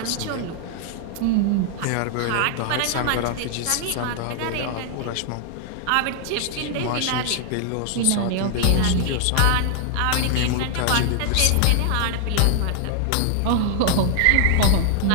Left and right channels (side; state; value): both; different; correlation 0.00